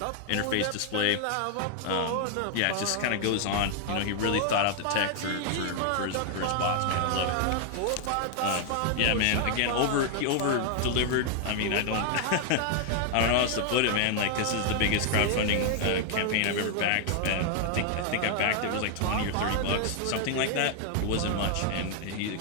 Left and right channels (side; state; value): both; different; correlation 0.00